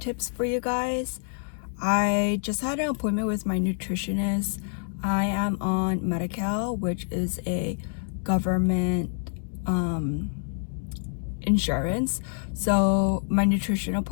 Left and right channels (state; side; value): silent; right; digital silence